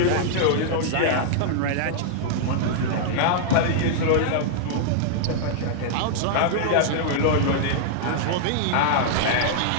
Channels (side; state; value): both; different; correlation -0.01